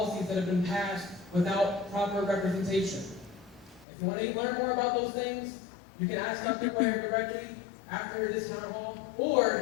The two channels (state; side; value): drops out; right; at 3.9 s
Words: that have been passed without proper representation. If you want to learn more about those things, you can ask Dr. Cuellar directly after this town hall,